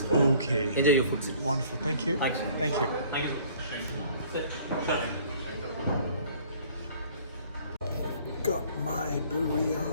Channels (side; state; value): both; inverted; correlation -0.55